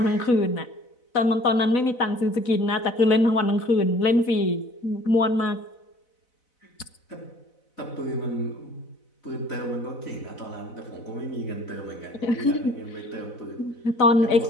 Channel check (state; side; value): late; right; 4.0 ms